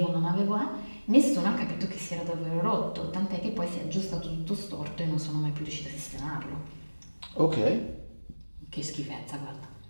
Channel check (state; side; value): inverted; both; correlation -1.00